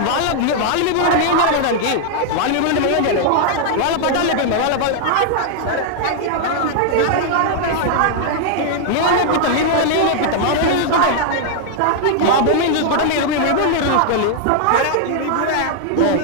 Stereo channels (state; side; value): different; both; correlation -0.01